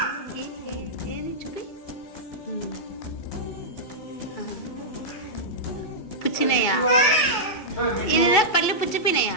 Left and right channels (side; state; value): right; late; 2.3 ms